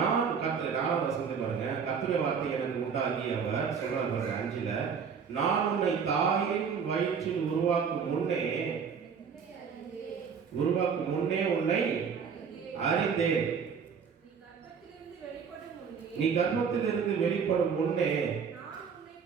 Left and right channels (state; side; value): quieter; left; 6.5 dB